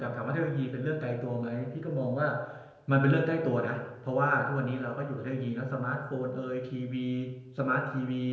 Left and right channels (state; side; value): identical; both; correlation 1.00